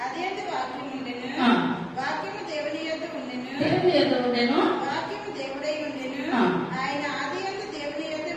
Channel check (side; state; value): both; identical; correlation 1.00